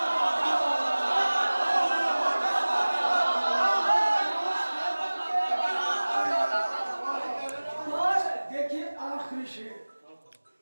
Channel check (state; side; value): inverted; both; correlation -1.00